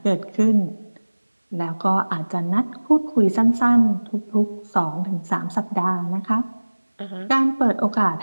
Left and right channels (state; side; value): inverted; both; correlation -1.00